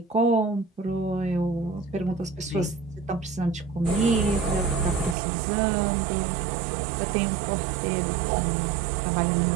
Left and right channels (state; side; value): drops out; left; at 5.2 s